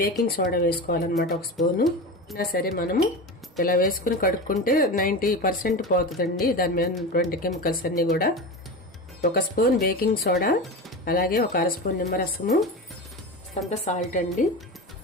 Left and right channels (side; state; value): both; normal; correlation 0.25